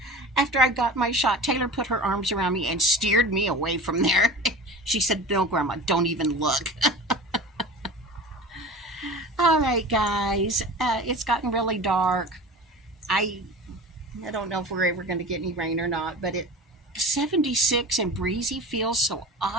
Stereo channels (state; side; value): normal; both; correlation 0.35